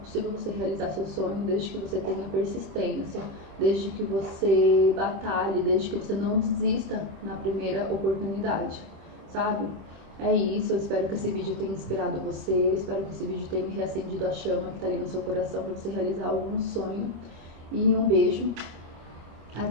você realizar seu sonho desde que você tenha persistência, desde que você batalhe, desde que você não desista na primeira oportunidade, sabe? É isso, eu espero que esse vídeo tenha inspirado você, eu espero que esse vídeo tenha reacendido a chama que tá ali no seu coração para você realizar algum sonho. E um beijo,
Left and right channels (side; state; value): left; late; 26 ms